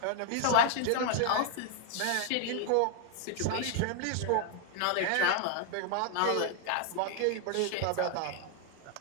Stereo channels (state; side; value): different; both; correlation 0.00